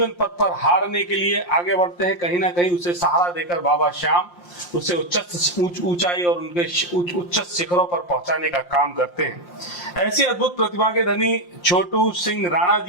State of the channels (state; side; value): late; right; 5.7 ms